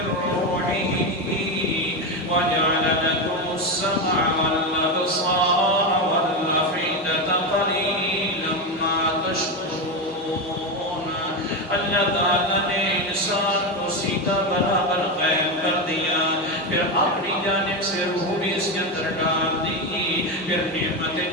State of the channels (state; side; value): normal; both; correlation 0.13